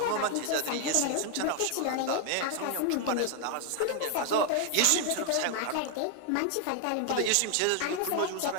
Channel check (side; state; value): both; different; correlation 0.00